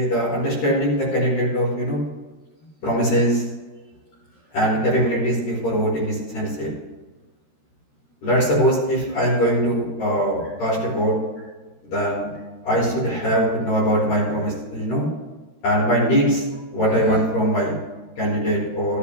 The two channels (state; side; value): late; right; 13 ms